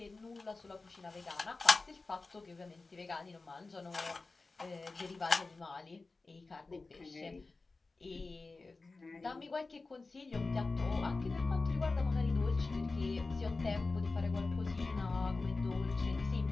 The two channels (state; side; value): quieter; right; 3.7 dB